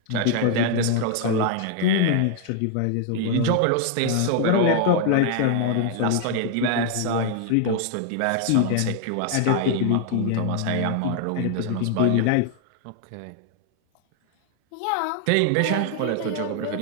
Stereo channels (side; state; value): both; different; correlation 0.00